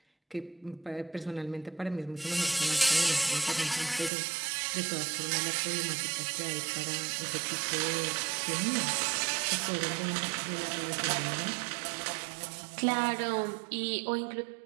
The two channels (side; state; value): left; drops out; at 4.1 s